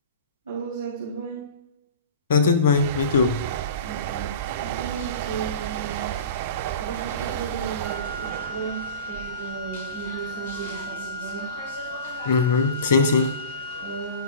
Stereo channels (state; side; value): inverted; both; correlation -0.36